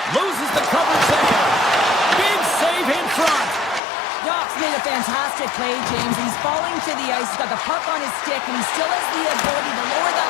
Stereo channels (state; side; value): drops out; right; at 3.8 s